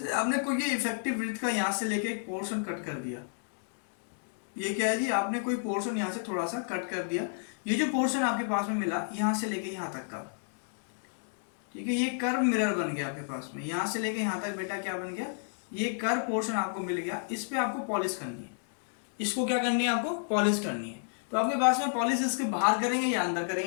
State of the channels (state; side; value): silent; right; digital silence